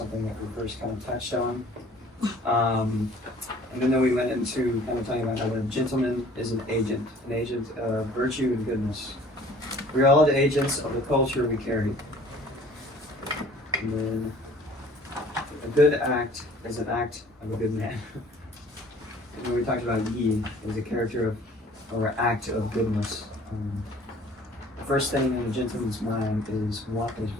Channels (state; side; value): normal; both; correlation 0.51